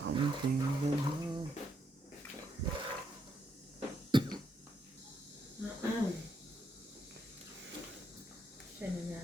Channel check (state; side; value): normal; both; correlation 0.77